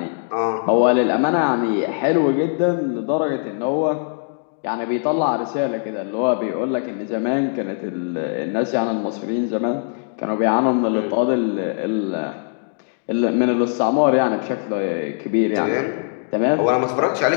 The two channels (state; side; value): silent; right; digital silence